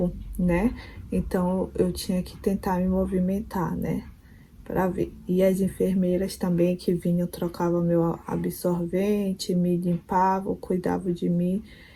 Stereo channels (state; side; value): identical; both; correlation 1.00